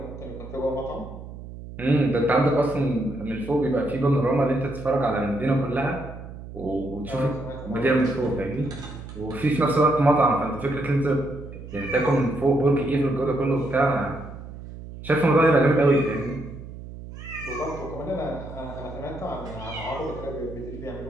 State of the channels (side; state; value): right; noise; hum, 13 dB below the sound